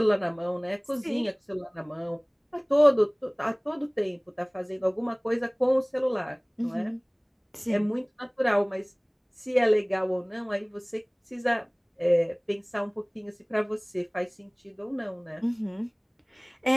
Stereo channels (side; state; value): both; identical; correlation 1.00